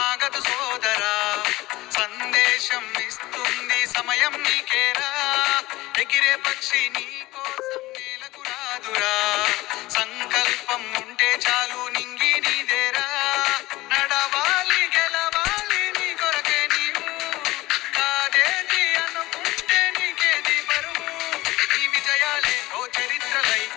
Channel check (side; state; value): right; quieter; 18.7 dB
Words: ఆగదు సోదరా, సందేశం ఇస్తుంది సమయం నీకేరా. ఎగిరే పక్షి నీ కోసం నేలకు రాదురా, సంకల్పం ఉంటే చాలు నింగి నీదేరా. నడవాలి గెలవాలి నీ కొరకే నీవు, కాదేది అనుకుంటే నీకేది బరువు. ఈ విజయాలే ఓ చరిత్రలై